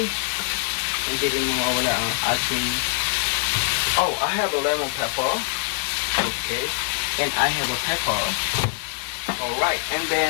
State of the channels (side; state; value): right; silent; digital silence